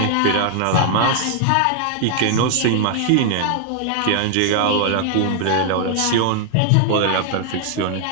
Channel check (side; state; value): both; different; correlation 0.00